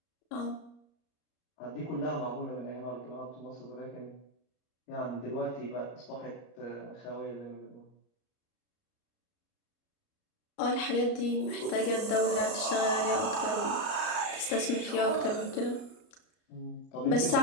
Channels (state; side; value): late; right; 34 ms